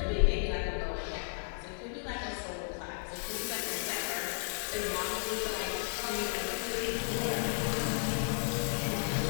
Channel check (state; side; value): silent; right; 55 dB below the other